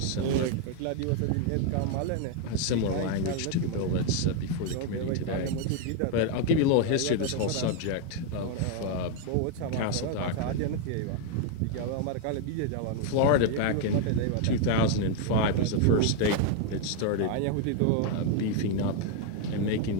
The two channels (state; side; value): different; both; correlation 0.00